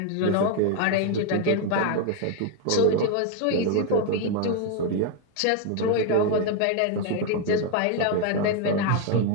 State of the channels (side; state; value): both; different; correlation 0.01